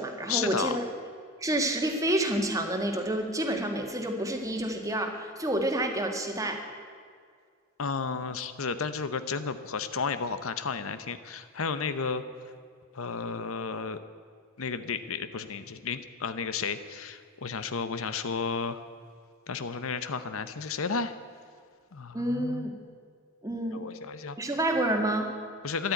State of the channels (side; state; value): both; normal; correlation 0.26